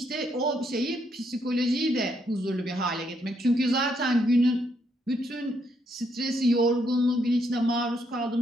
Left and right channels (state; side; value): normal; both; correlation 0.75